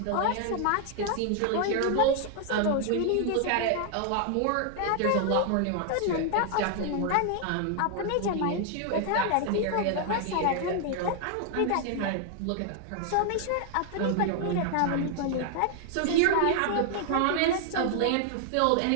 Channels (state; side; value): different; both; correlation 0.00